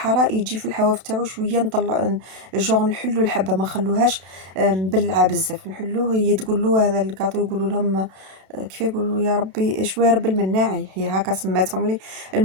يجي في الحواف تاعو شويه نطلع جوغ نحلو الحبه ما نخلوهاش مبلعه بزاف نحلوه. هي تقول له هذا الكاطو يقولوا لهم كيف يقولوا يا ربي شويه رب المناعي هي هكا سماتهم لي.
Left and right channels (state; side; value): late; left; 32 ms